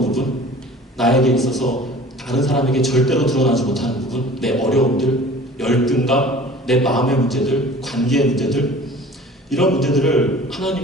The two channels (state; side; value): normal; both; correlation 0.45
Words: 부분, 나에게 있어서 다른 사람에게 절대로 드러나지 못하는 부분, 내 어려움들, 열등감, 내 마음의 문제들, 관계의 문제들, 이런 문제들을